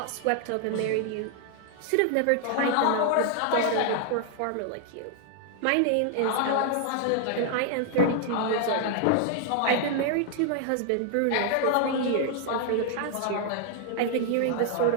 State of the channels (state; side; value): different; both; correlation 0.00